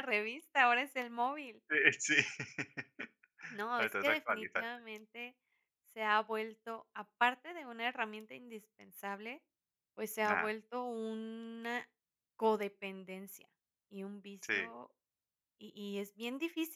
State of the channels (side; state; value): both; identical; correlation 1.00